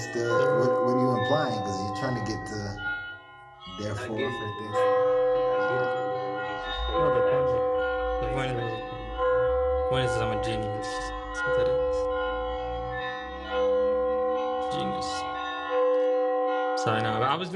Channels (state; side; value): identical; both; correlation 1.00